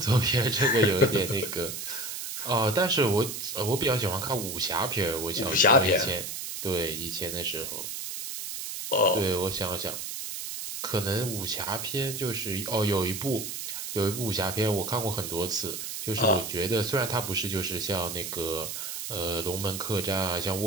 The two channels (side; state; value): right; noise; hiss, 6 dB below the sound